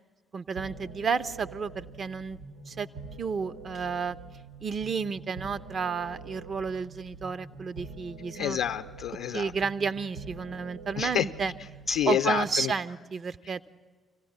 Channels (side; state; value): both; normal; correlation 0.66